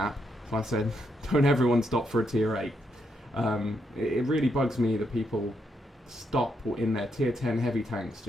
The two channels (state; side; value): normal; both; correlation 0.79